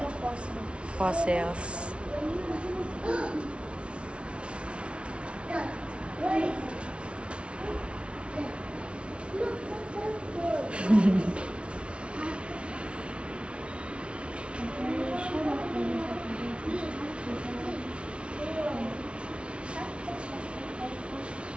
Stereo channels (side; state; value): left; late; 0.059 ms